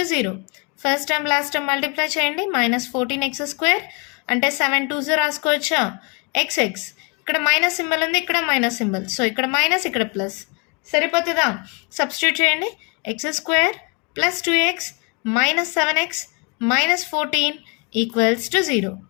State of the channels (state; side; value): quieter; right; 32.9 dB